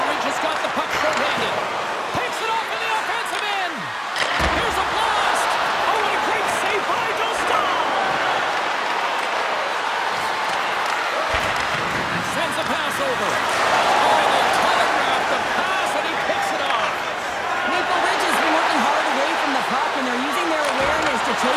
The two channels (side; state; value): both; identical; correlation 1.00